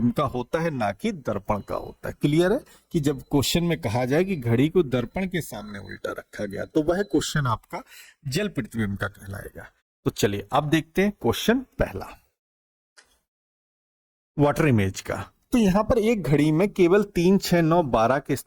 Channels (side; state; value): both; identical; correlation 1.00